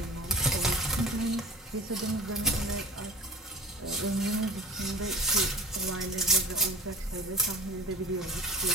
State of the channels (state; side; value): normal; both; correlation 0.38